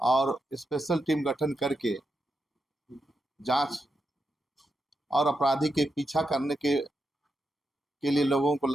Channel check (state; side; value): normal; both; correlation 0.86